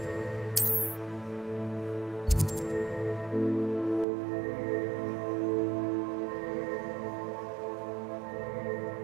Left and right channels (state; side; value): drops out; left; at 4.0 s